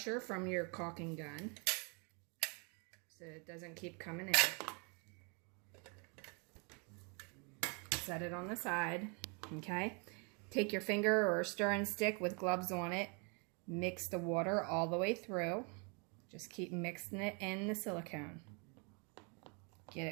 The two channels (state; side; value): quieter; left; 34.4 dB